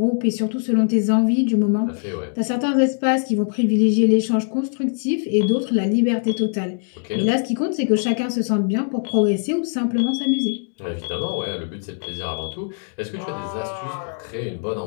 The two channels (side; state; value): right; silent; 64 dB below the other